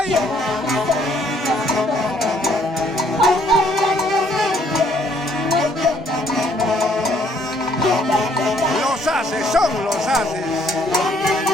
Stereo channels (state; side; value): normal; both; correlation 0.65